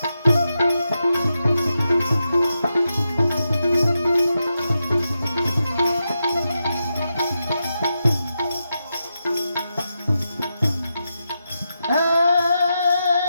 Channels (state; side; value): inverted; both; correlation -0.88